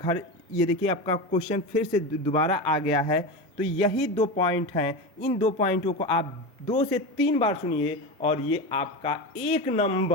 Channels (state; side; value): normal; both; correlation 0.22